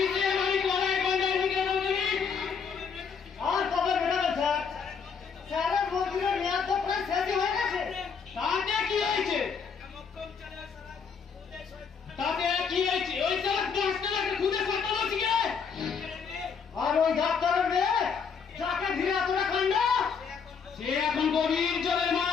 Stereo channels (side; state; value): right; quieter; 6.1 dB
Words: আর কবে বেরোবে স্যার? স্যারের মন্ত্রীর মেয়াদ তো প্রায় শেষই হয়ে গেছে। তাতে কি হয়েছে? তাতে কি হয়েছে? ওই স্যার ডাক্তারকে খুঁজে করতে বলছি। আর ওই ডাক্তারের মেয়ে যাকে ঘিরে এতটা কাণ্ড, সে এখন গভীর জলের